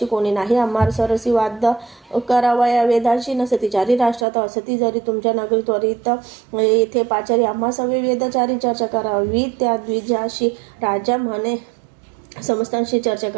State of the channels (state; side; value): drops out; left; at 4.2 s